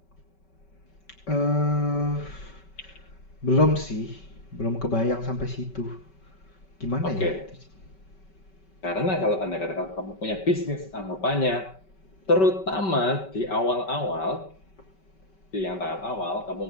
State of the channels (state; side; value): late; right; 5.2 ms